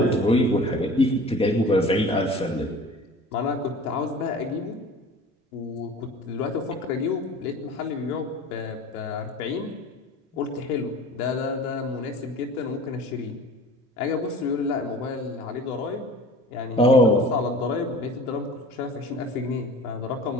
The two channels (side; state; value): both; normal; correlation 0.41